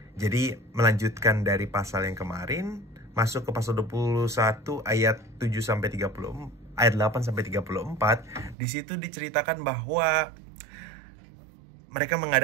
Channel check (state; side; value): drops out; left; at 8.6 s